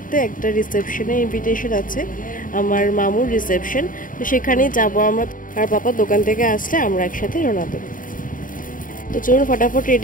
একটা রিসেপশনে। ইনভিটেশন আছে আমার মামুর রিসেপশন, তো সেখানেই যাব আমরা। আর পাপা দোকান থেকে আসলে আমরা একসাথে রওনা দেবো। তো চলুন ফটাফট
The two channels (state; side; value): late; right; 0.39 ms